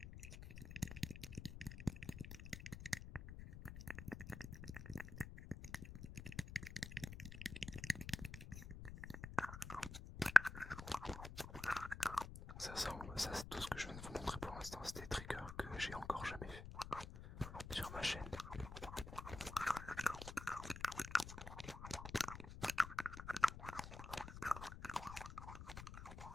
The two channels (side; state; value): left; noise; rumble, 10 dB below the sound